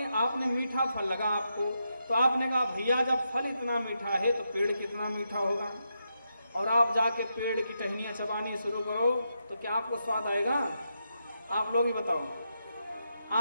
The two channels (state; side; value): inverted; both; correlation -0.84